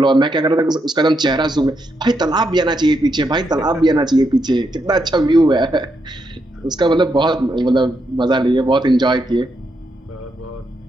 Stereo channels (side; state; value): both; normal; correlation 0.81